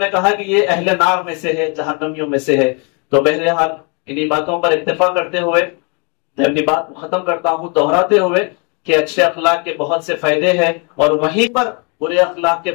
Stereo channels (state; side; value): quieter; right; 34.7 dB